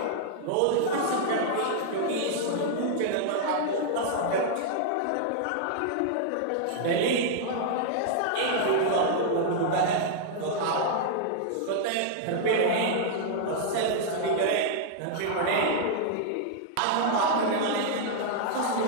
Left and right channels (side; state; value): both; different; correlation -0.01